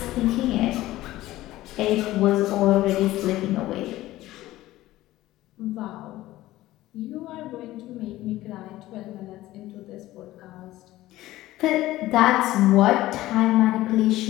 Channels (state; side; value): quieter; right; 16.2 dB